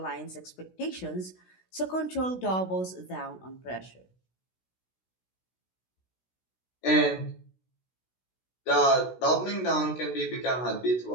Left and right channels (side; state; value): right; late; 16 ms